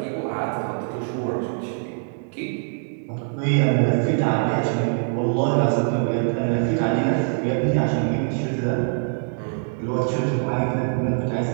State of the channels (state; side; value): silent; left; digital silence